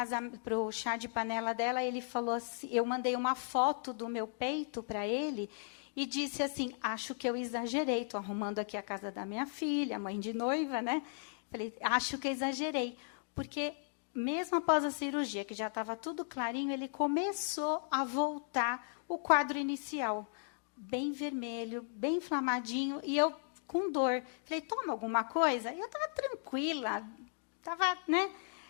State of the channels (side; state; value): right; silent; digital silence